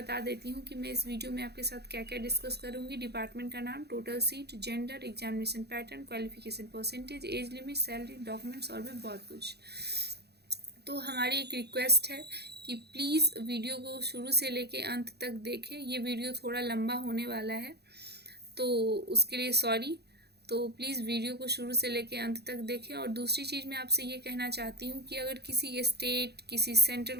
देती हूँ कि मैं इस वीडियो में आपके साथ क्या क्या डिस्कस करूँगी। डिपार्टमेंट का नाम, total seat, gender, examination pattern, qualification percentage, age limit, salary, documents और भी बहुत कुछ। तो हमारी एक रिक्वेस्ट है कि प्लीज़ वीडियो को शुरू से लेके अंत तक देखें। ये वीडियो थोड़ा लंबा होने वाला है तो उसके लिए सॉरी। तो प्लीज़ वीडियो को शुरू से लेकर अंत तक देखें। और दूसरी चीज़ मैं आपसे ये कहना चाहती हूँ कि अगर किसी स्टेट, किसी सेंट्रल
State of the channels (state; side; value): late; left; 0.48 ms